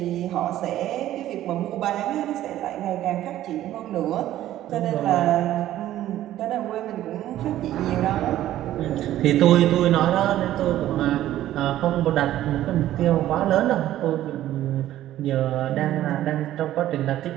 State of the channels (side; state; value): left; quieter; 13.4 dB